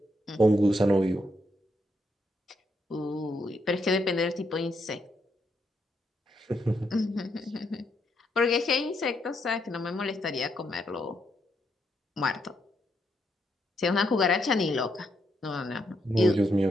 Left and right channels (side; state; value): both; normal; correlation 0.78